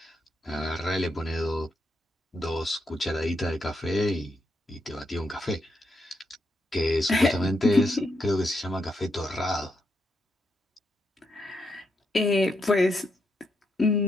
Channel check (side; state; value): both; normal; correlation 0.81